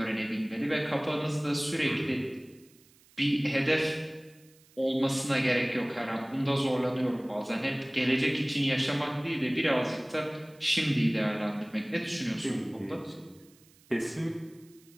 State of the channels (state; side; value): noise; right; hiss, 29 dB below the sound